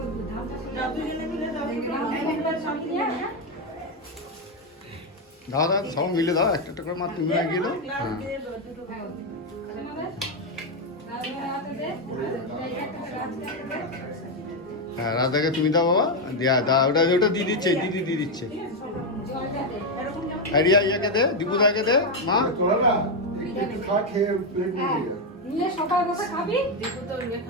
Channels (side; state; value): both; normal; correlation 0.05